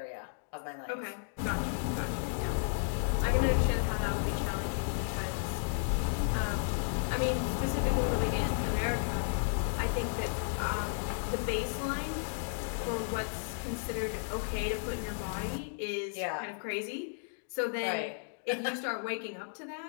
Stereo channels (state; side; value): silent; right; digital silence